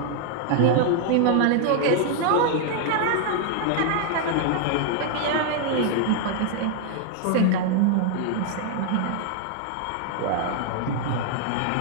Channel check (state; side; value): different; both; correlation 0.00